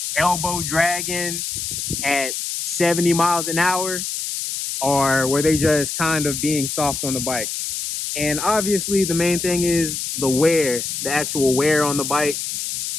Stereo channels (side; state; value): left; noise; hiss, 4 dB below the sound